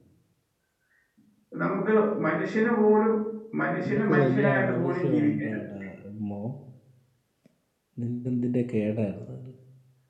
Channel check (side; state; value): both; identical; correlation 1.00